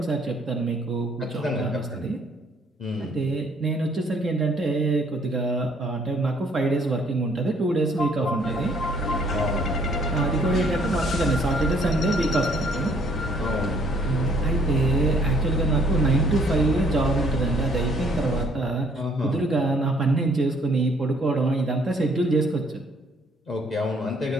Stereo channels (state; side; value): normal; both; correlation 0.63